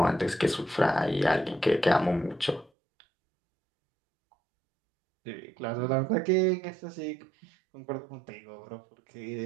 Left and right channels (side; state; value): left; drops out; at 2.7 s